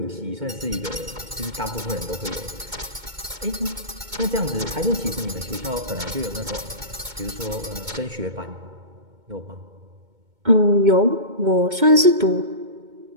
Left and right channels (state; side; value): late; left; 2.2 ms